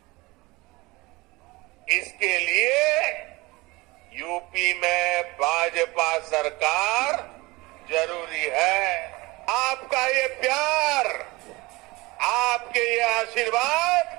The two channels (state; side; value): quieter; left; 22.6 dB